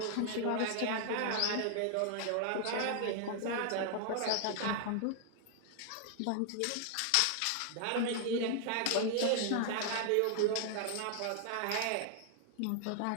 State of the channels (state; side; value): different; both; correlation 0.00